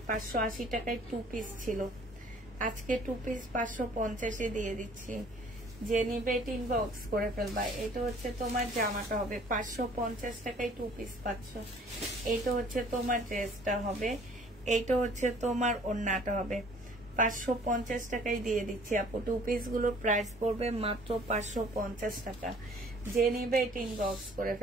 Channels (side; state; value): both; normal; correlation 0.54